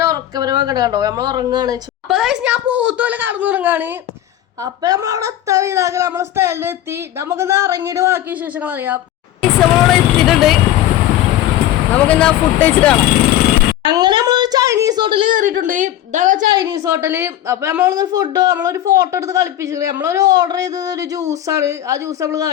ഉറക്കപരമൊക്കെ കണ്ടോ. നമ്മൾ ഉറങ്ങാണ്. അപ്പൊ ഞാൻ പോത്തുപോലെ കടന്നുറങ്ങാണ്. അപ്പൊ നമ്മളവിടെ എത്താൻ ഇതാക്കി നമ്മളെ സ്ഥലത്ത് എത്തി. നമുക്കിന്ന് ഇറങ്ങിയിട്ട് ബാക്കി വിശേഷങ്ങൾ അറിയാം. നമ്മളവിടെ എത്തിയിട്ടുണ്ട്. നമുക്കിന്ന് ഫുഡ് കഴിച്ചിട്ട് കാണാം. അങ്ങനെ നമ്മളൊരു ചൈനീസ് ഹോട്ടലിൽ കയറിയിട്ടുണ്ട്. ഇതാണ് ചൈനീസ് ഹോട്ടല്. അപ്പൊ നമ്മളൊരു ഫോട്ടോ എടുത്ത് കളിപ്പിച്ചിട്ടുണ്ട്. നമ്മളൊരു ഓർഡർ ചെയ്തത് ഒരു ജ്യൂസാണ്. ആ ജ്യൂസ് നമ്മൾ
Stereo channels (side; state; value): right; quieter; 12.6 dB